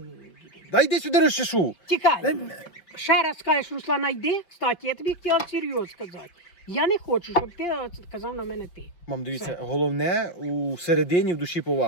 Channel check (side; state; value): right; late; 5.7 ms